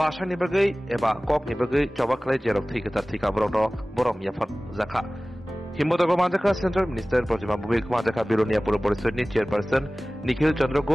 ni bagai eba kok ni bagai coba klai jerok thika borom yafat zaka himboto manjaka Central Minister Projima Bubik manjaka Bilonia Purpurishot ni chairperson Nikhil Chandra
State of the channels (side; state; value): both; normal; correlation 0.98